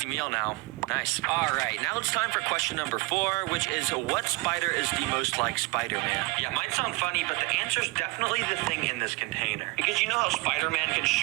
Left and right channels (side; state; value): left; quieter; 25.3 dB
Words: meal now. Nice. Alright, now it's time for question number 4, which is what spider is the most like Spider-Man? Yeah, might sound funny, but the answer's definitely the thing in this container. Because you know how Spider-Man can